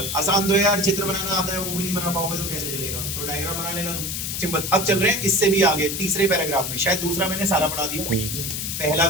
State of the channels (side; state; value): left; noise; hiss, 3 dB below the sound